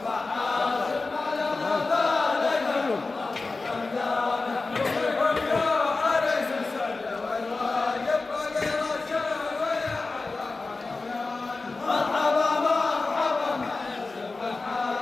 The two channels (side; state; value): right; quieter; 3.7 dB